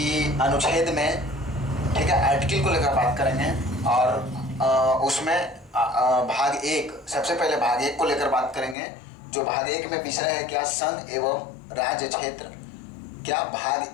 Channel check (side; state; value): right; drops out; at 8.8 s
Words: अनुच्छेद में, ठीक है, आर्टिकल को लेकर बात करेंगे। और उसमें भाग एक, सबसे पहले भाग एक को लेकर बात करेंगे। जो भाग एक में विषय है क्या, संघ एवं राज्य क्षेत्र। क्या